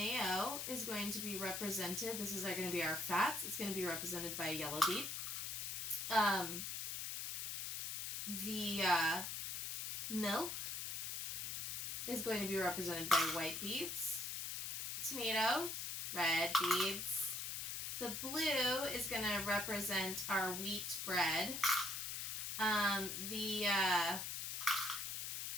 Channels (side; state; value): left; noise; hiss, 3 dB below the sound